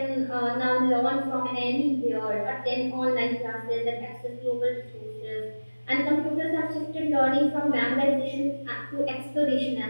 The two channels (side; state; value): both; inverted; correlation -1.00